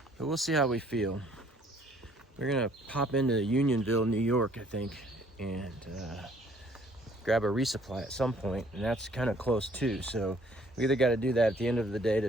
But we'll see how we feel. We're gonna pop into Unionville, New York, I think, and grab a resupply at some point, and that's kind of close too. So we either got to do that at the end of the day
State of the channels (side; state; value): both; normal; correlation 0.60